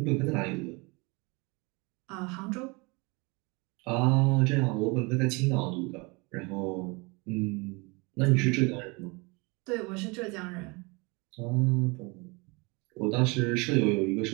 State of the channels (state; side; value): quieter; left; 27.8 dB